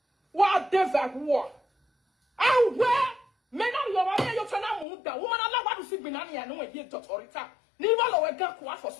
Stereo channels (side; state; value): right; drops out; at 4.9 s